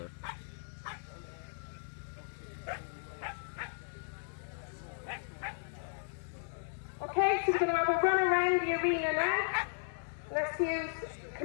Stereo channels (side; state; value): right; silent; 54 dB below the other